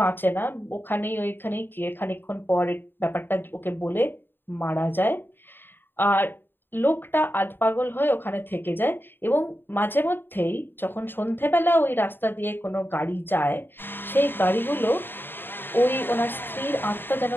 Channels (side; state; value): right; late; 0.098 ms